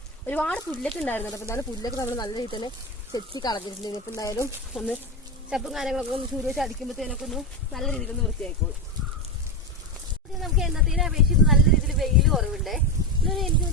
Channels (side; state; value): both; normal; correlation 0.14